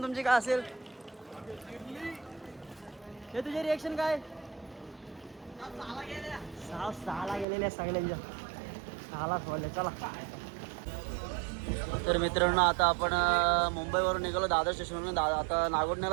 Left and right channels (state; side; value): drops out; left; at 7.5 s